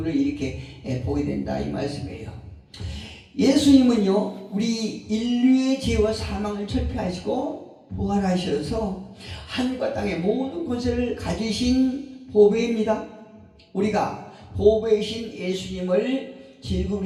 이렇게 보게 된다, 이 말씀이에요. 예수님은요, 우리 인류의 죄와 사망을 철폐하시고 부활하셔서 하늘과 땅의 모든 권세를 가지신 보배입니다. 우리가 보배이신 예수님을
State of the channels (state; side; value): identical; both; correlation 1.00